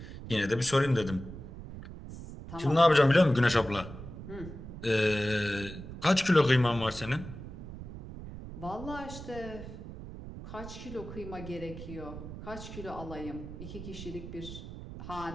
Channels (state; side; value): noise; right; rumble, 11 dB below the sound